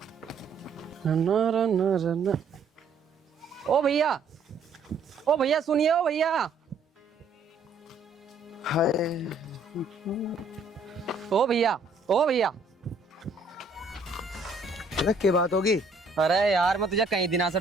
ओ भैया, ओ भैया सुनिए, ओ भैया। हाय, ओ भैया, ओ भैया। अरे क्या बात होगी? अरे यार मैं तुझे कई दिनों से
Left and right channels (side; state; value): left; quieter; 3.7 dB